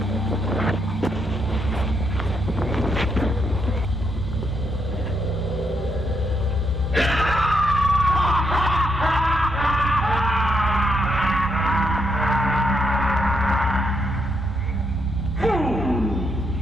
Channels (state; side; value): normal; both; correlation 0.78